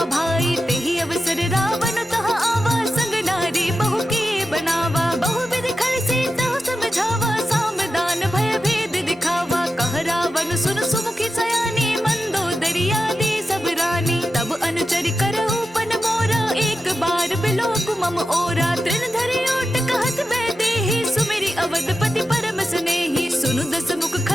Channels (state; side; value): normal; both; correlation 0.91